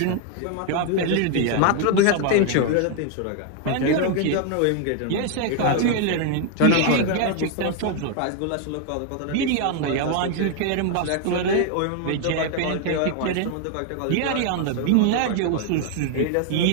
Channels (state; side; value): different; both; correlation 0.00